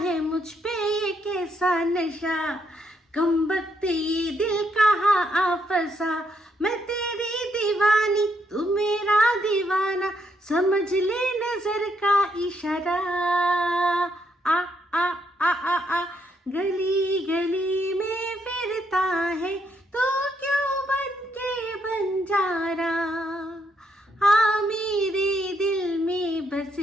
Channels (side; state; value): both; normal; correlation 0.76